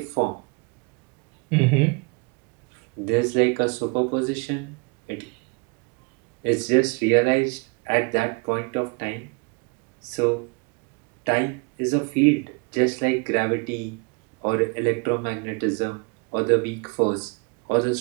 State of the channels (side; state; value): left; quieter; 31.0 dB